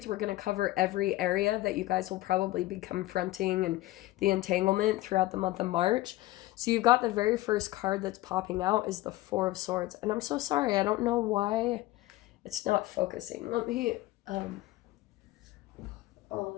we're going to cover every area that you guys will probably be confronting and the entanglement throughout the month of March. So, you've got the very first card that's popping out is the Four of Swords. And I'm so sorry, I don't know why it's not focusing. Let me, on.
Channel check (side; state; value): right; quieter; 17.6 dB